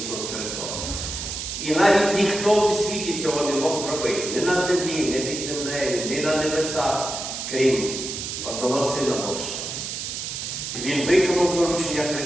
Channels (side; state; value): right; noise; hiss, 5 dB below the sound